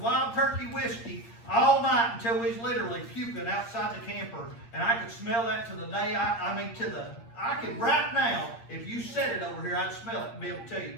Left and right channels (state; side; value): late; right; 8.5 ms